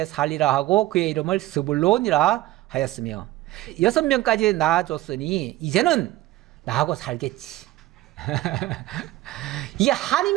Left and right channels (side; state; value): left; quieter; 16.7 dB